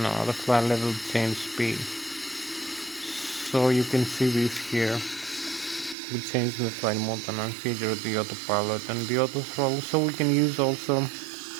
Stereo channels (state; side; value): drops out; left; at 6.0 s